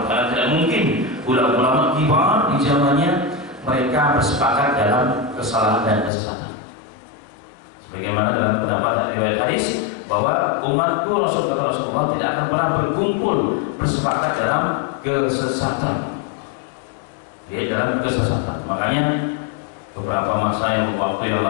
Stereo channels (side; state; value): right; drops out; at 6.1 s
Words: karena tidak mungkin ulama-ulama kibar di zamannya mereka bersepakat dalam kesalahan dan kesesatan. Sebagaimana dalam pendapat riwayat hadis bahwa umatku Rasulullah tidak akan pernah berkumpul bersepakat dalam kesesatan. Dia dalam kesesatan. Makanya beberapa masa yang waktu yang